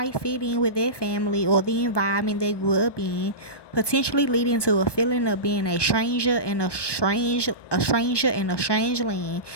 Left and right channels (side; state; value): right; late; 1.2 ms